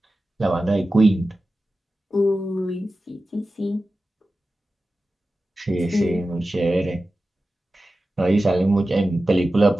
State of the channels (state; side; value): normal; both; correlation 0.94